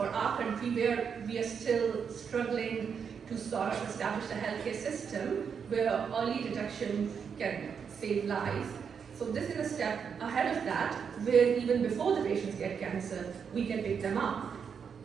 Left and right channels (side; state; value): left; quieter; 6.7 dB